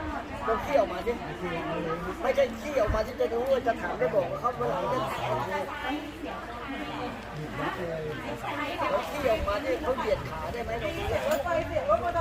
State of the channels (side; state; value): both; identical; correlation 1.00